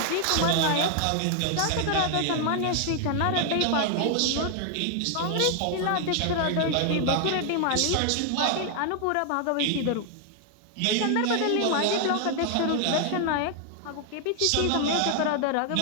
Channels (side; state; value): both; different; correlation 0.00